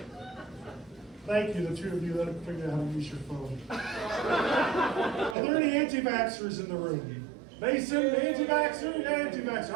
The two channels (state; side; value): drops out; left; at 5.4 s